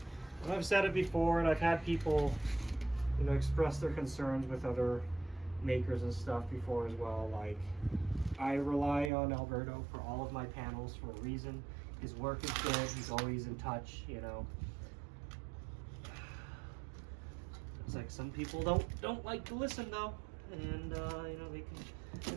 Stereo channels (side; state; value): left; drops out; at 9.1 s